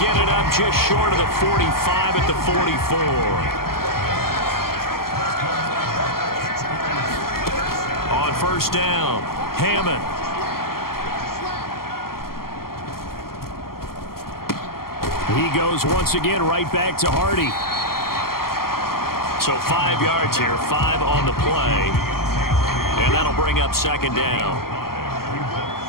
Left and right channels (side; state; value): right; late; 0.92 ms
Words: it up just short of the 45 at the 44. On 1st down, Hammond. He goes once again right back to Hardy. So 5 yards here, 5 on the play. And that'll bring up second down.